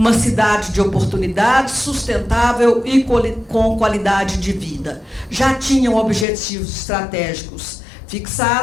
cidade de oportunidades, sustentável e com qualidade de vida. Já tinham objetivos estratégicos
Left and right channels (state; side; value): drops out; right; at 6.2 s